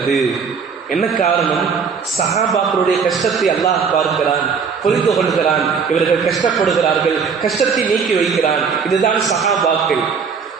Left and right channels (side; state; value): left; quieter; 5.9 dB